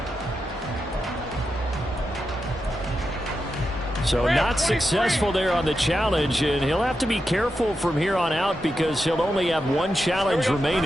So not successful there on the challenge, and he'll have to be careful from here on out because he'll only have 1 challenge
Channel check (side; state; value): both; normal; correlation 0.88